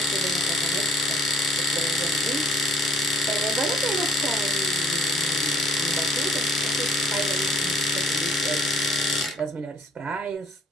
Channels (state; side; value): normal; both; correlation 0.57